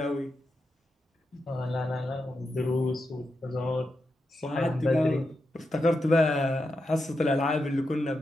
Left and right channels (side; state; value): both; normal; correlation 0.87